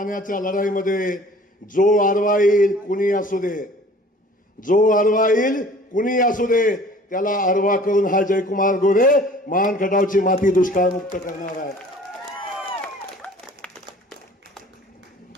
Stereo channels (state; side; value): normal; both; correlation 0.49